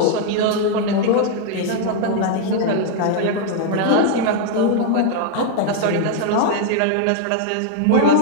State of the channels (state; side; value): different; both; correlation 0.00